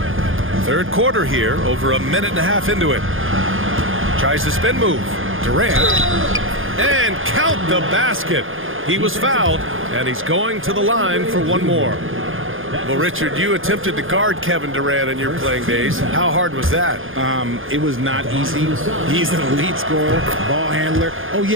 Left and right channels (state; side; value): late; left; 0.59 ms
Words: Third quarter here, over a minute and a half into it. Tries the spin move. Durant. And count the basket. He was fouled, and he's going to the line for one more. Well, Richard, you attempted to guard Kevin Durant in your playing days. How hard was that? It was not easy. He's an elite scorer, ball handler. Oh,